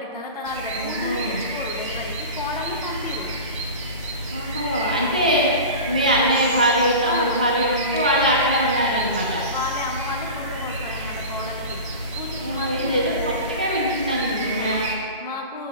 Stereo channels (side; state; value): both; inverted; correlation -0.31